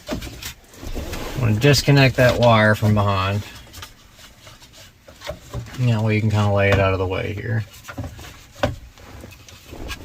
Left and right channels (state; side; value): identical; both; correlation 1.00